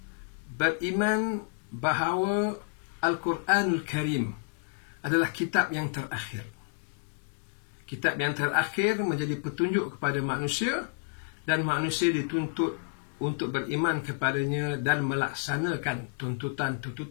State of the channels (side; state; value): right; silent; digital silence